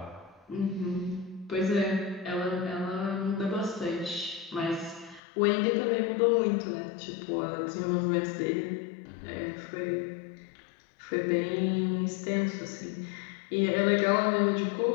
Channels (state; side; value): drops out; right; at 5.2 s